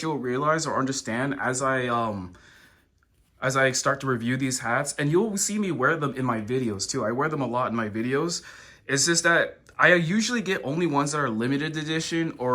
you'll realize or understand as I start to review these hats, and you'll see me wear them in my videos too. I wear them a lot in my videos. It's just that I usually get only ones that are limited edition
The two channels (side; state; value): both; identical; correlation 1.00